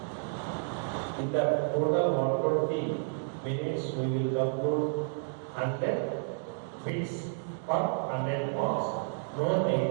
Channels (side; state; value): left; silent; digital silence